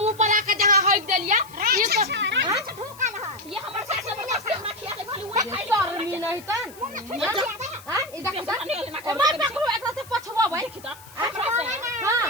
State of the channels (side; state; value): left; noise; hiss, 21 dB below the sound